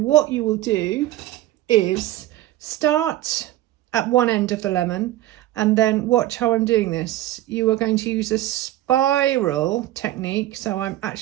you will do is start at one end of the lemon and then watch how I'm doing this. You are going to use a spiral technique. So I'm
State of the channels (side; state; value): left; quieter; 15.1 dB